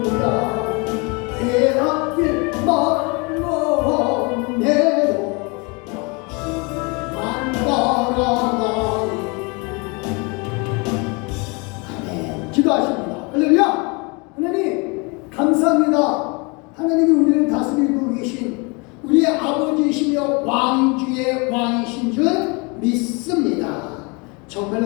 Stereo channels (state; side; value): quieter; right; 30.1 dB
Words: 내 앞길 멀어내도 만 따라가리 아멘 기도하십니다. 할렐루야 하나님 감사합니다. 하나님이 우리를 다스리고 계신 우리의 아버지이시며 왕 중의 왕이신 줄 믿습니다.